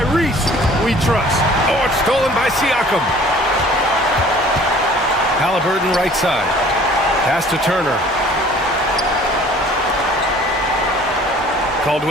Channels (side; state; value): both; normal; correlation 0.51